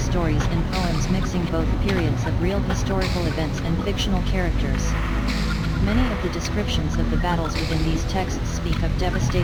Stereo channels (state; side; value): identical; both; correlation 1.00